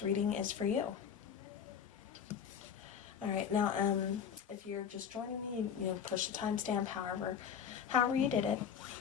reading is for you. All right, now, if you're just joining me, push the timestamp, however you did it.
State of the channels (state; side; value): quieter; right; 7.7 dB